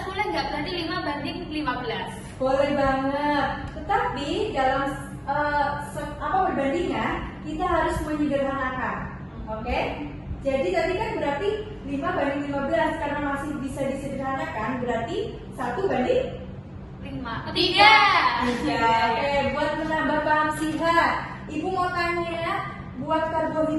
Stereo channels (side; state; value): both; identical; correlation 1.00